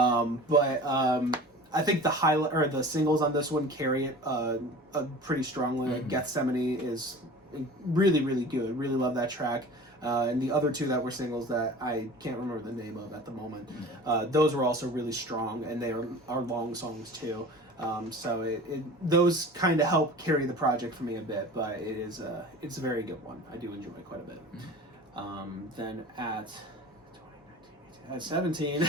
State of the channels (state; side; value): normal; both; correlation 0.39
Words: I think the highlight or the singles on this one carry it pretty strongly. Like Gethsemane is really, really good. Really love that track. And the other two that were singles that I can't remember the name of at the moment, those were also really strong, and they are long songs too. So those kind of help carry the project for me a bit, but it's a very good one. I do enjoy it quite a bit. Then at